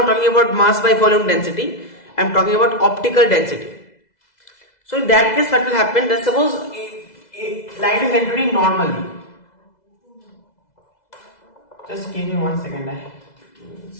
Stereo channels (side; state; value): right; late; 2.0 ms